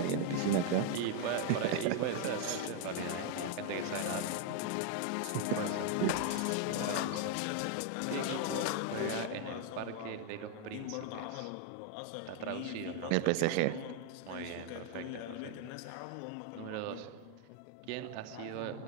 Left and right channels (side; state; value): both; different; correlation 0.00